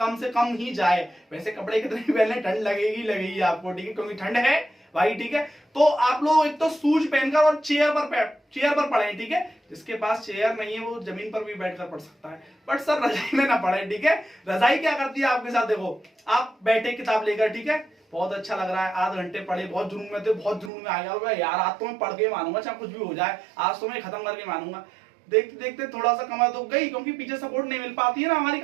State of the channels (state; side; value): drops out; left; at 20.7 s